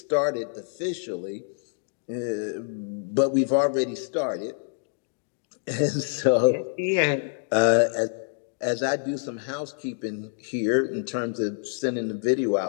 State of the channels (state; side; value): silent; right; digital silence